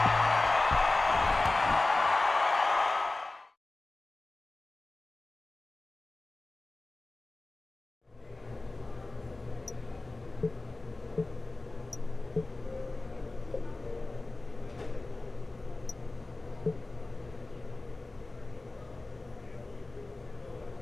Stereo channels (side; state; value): right; quieter; 3.1 dB